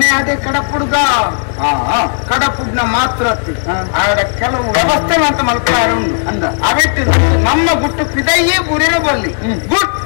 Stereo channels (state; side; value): silent; right; digital silence